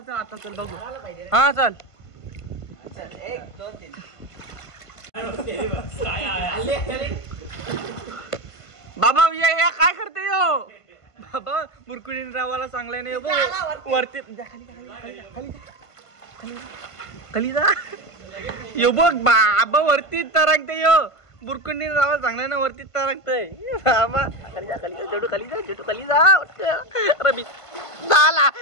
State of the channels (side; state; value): right; late; 1.5 ms